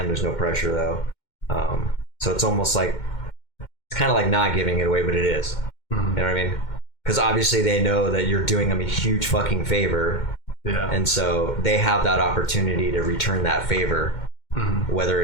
There's no pressure though. So it's almost like, it's kind of like not giving it away, but it is. You know what I mean? Because obviously they know that you're doing them a huge fucking favor. Yeah. And so they have that opportunity to return that favor. Whether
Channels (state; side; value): late; right; 2.1 ms